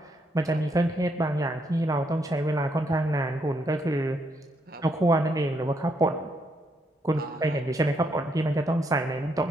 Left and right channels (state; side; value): normal; both; correlation 0.76